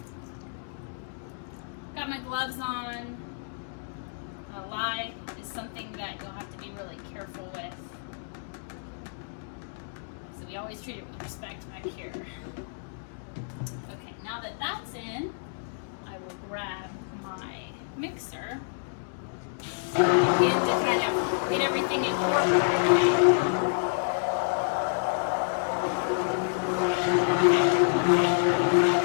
Got my gloves on. Lye is something that you'll have to be really careful with. So we always treat it with respect back here. Okay, now that that's in, I will grab my mixer and to kind of get everything incorporated.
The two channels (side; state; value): right; silent; digital silence